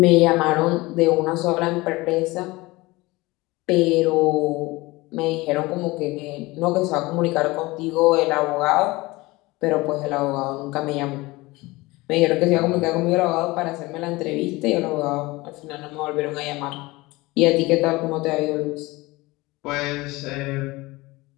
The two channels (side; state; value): right; quieter; 21.5 dB